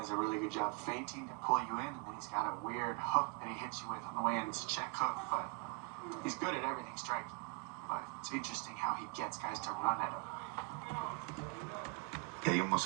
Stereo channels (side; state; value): left; quieter; 29.5 dB